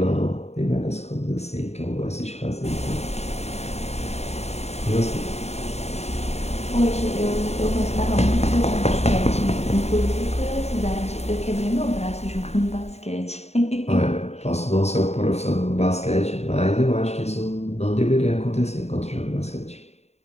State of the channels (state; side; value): late; right; 0.31 ms